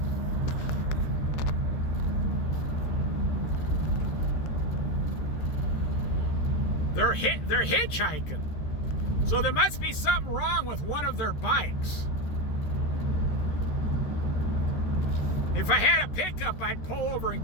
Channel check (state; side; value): late; right; 13 ms